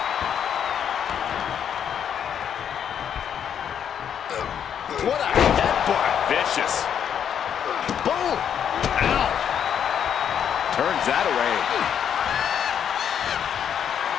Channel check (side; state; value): right; quieter; 8.6 dB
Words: What a headbutt. Vicious. Boom! Ow! Turns that away.